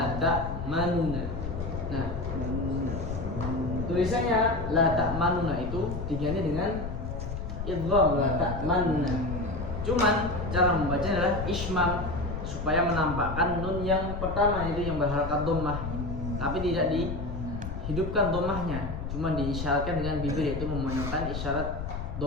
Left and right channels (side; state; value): left; noise; rumble, 6 dB below the sound